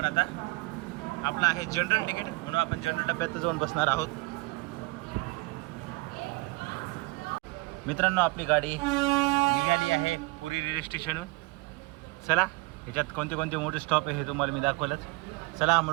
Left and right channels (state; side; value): quieter; left; 24.9 dB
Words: आता. आपला आहे जनरल तिकीट म्हणून आपण जनरल डब्यात जाऊन बसणार आहोत. मित्रांनो, आपली गाडी निघाली आहे पुरी रेल्वे स्टेशनहून. चला ह्याच्यात कोणते कोणते मोठे स्टॉप आहे हे तुम्हाला मी दाखवलंच. चला